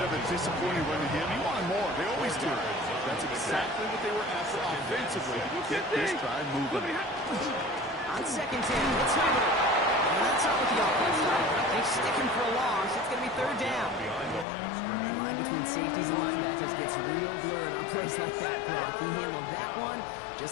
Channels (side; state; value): right; drops out; at 14.5 s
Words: of a disappointing run to him. He wanted more. They always do. That's exactly what they were after offensively to get this drive moving. On 2nd 10, it's Weber. And that's not what the offense done. They're sticking for a loss. It's going to be 3rd down. The line between safeties and linebackers gets real blurred on plays like that, Brock. He handled that one